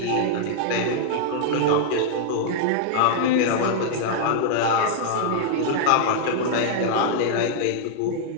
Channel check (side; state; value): both; different; correlation -0.01